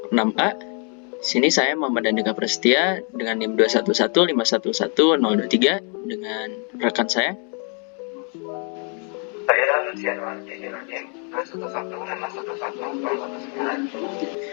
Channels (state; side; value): quieter; right; 39.1 dB